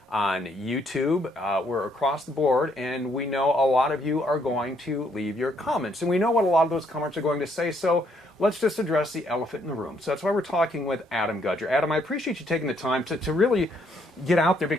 on YouTube, we're across the board, and we know a lot of you are going to leave your comments, and we know what a lot of those comments are going to say, so let's just address the elephant in the room. So that's why we're talking with Adam Gudger. Adam, I appreciate you taking the time to really get out there,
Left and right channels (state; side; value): normal; both; correlation 0.70